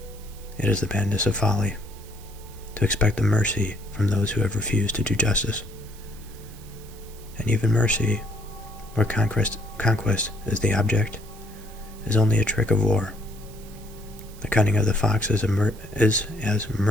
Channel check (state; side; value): noise; right; hiss, 22 dB below the sound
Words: It is the madness of folly to expect the mercy from those who have refused to do justice. And even mercy, where conquest is the object, is only a trick of war. The cunning of the fox is as